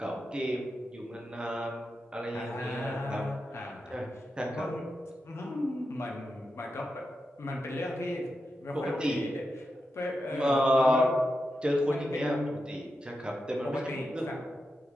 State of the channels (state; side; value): normal; both; correlation 0.88